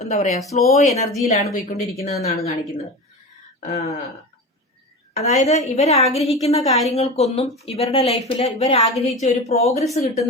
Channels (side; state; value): both; normal; correlation 0.28